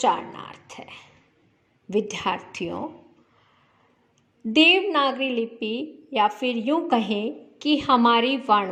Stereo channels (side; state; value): both; identical; correlation 1.00